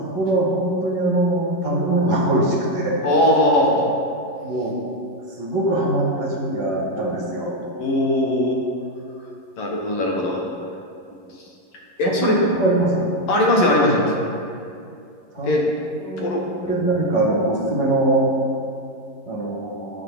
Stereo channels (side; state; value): right; late; 11 ms